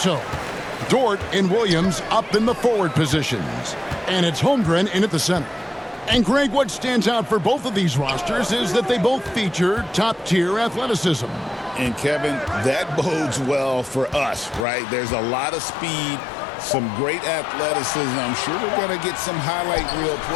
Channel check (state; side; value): drops out; right; at 14.7 s